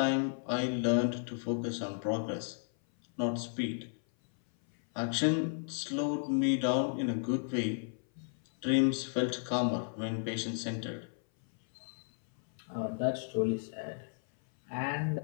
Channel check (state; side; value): silent; right; 55 dB below the other